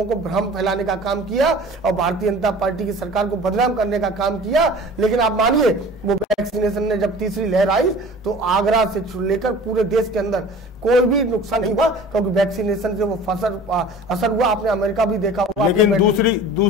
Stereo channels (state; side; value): normal; both; correlation 0.42